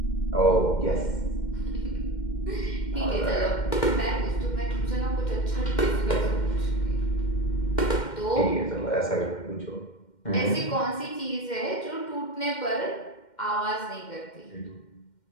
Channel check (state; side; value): late; right; 2.1 ms